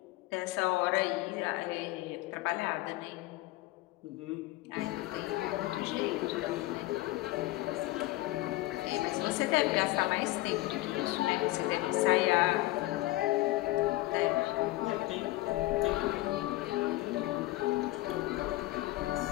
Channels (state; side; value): quieter; right; 18.6 dB